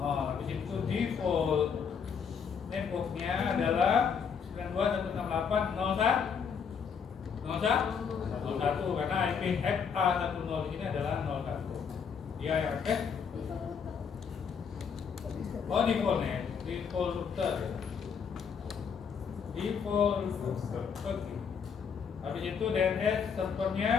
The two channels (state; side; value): quieter; right; 6.6 dB